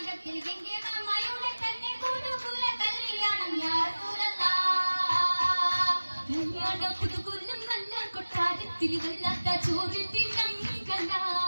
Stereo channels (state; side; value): inverted; both; correlation -1.00